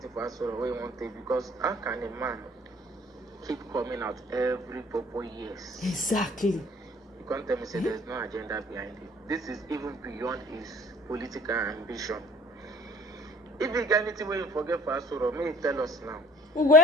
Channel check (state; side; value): normal; both; correlation 0.51